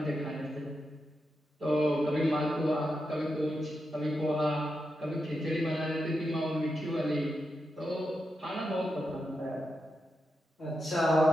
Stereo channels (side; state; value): both; normal; correlation 0.87